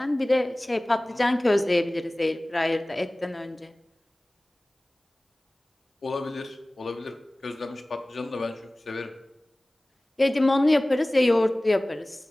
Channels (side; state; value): both; normal; correlation 0.98